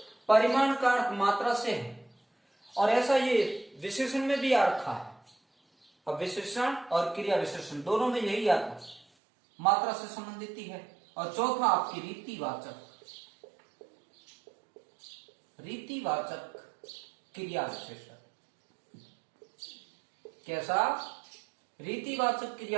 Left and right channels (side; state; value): left; drops out; at 9.1 s